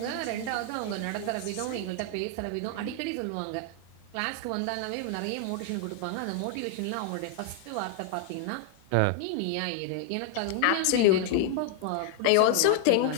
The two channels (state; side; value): different; both; correlation 0.00